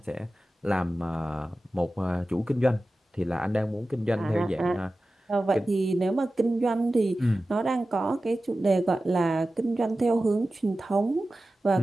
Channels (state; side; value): normal; both; correlation 0.95